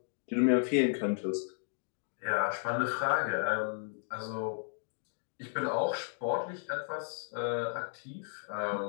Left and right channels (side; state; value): right; silent; digital silence